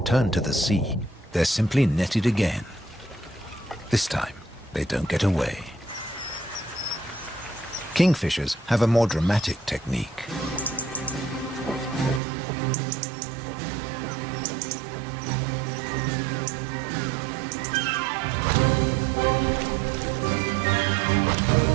to the sea, they're simply netted again. This time, they don't get away. Kingfishers have a more dramatic technique.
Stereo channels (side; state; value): left; drops out; at 12.2 s